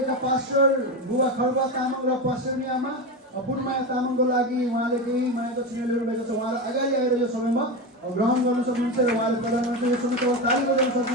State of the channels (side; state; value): both; normal; correlation 0.18